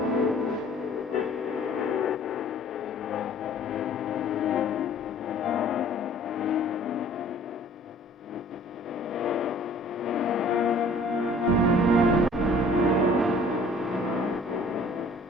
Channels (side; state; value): both; normal; correlation 0.52